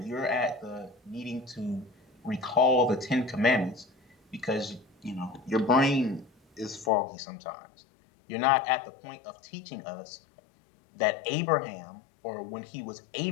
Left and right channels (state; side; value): drops out; right; at 6.9 s